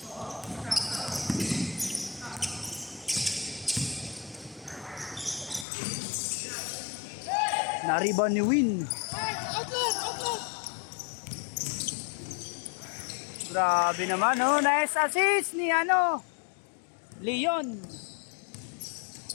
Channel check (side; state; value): right; drops out; at 5.7 s